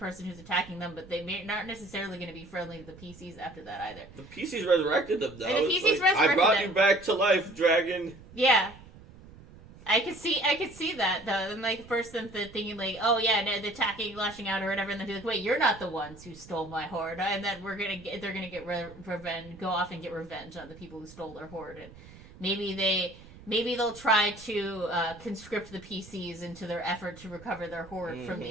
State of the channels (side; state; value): right; noise; rumble, 20 dB below the sound